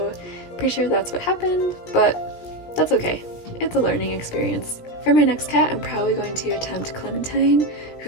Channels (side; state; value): right; late; 17 ms